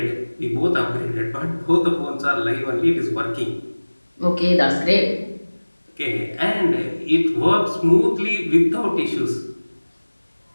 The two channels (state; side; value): inverted; both; correlation -1.00